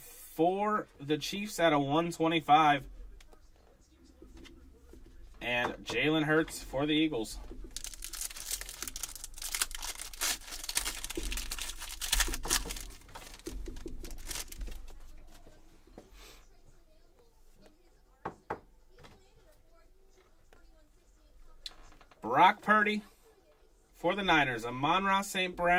for the Chiefs at a 125. And Jalen Hurts for the Eagles. Brock Purdy for the Niners. Amon-Ra St.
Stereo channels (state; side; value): identical; both; correlation 1.00